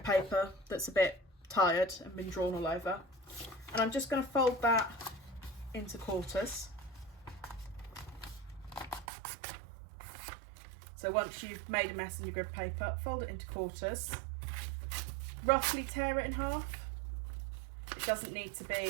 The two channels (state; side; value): drops out; left; at 9.1 s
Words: paper that's a bit tired and been drawn all over, and I'm just going to fold that into quarters. So once you've made a mess in your grid paper, fold it into quarters, roughly tear it in half. It doesn't need to